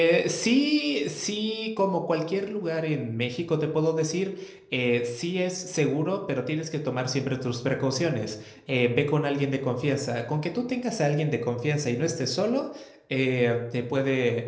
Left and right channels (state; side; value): identical; both; correlation 1.00